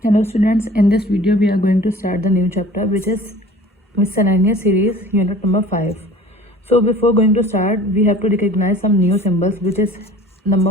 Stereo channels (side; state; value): both; normal; correlation 0.47